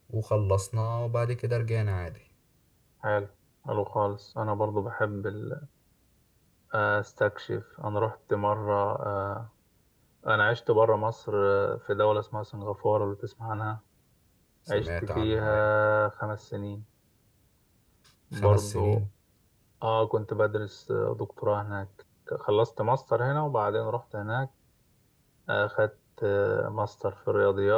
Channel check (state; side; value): identical; both; correlation 1.00